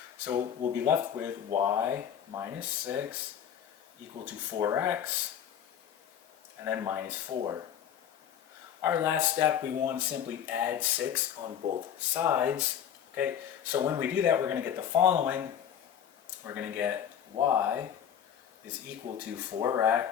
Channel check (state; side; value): quieter; right; 9.2 dB